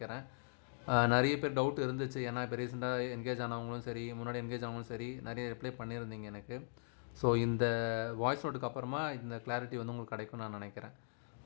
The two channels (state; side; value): silent; right; digital silence